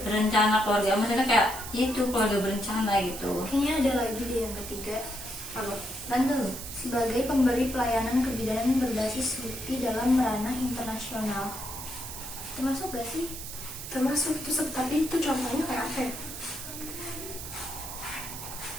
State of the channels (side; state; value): right; noise; hiss, 9 dB below the sound